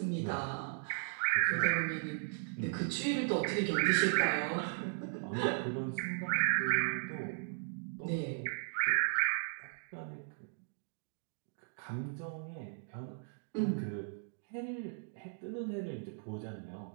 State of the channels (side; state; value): left; silent; digital silence